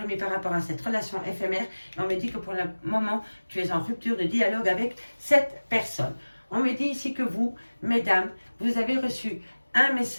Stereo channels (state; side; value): inverted; both; correlation -1.00